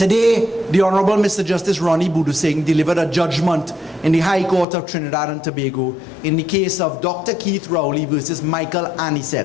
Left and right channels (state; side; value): drops out; right; at 4.7 s